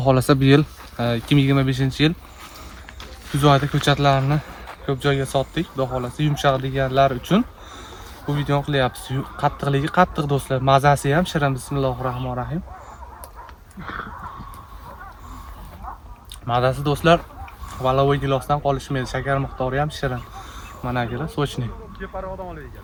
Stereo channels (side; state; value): both; identical; correlation 1.00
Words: xolasa bu yil 2025-yil kuz oyida ko'chatlarni ko'p joyga sotdik. Xudo xolasa yumshoq deganlar uchun bu videoni qilyapmiz. Qattiqligi qattiq do'stlar, mazasi ham shirin. Bismillahirrohmanirrohim. Mazasi do'stlar valovoy gilosdan qolishmaydi. Shakar miqdori ham shirin. Mana akalar, sochni.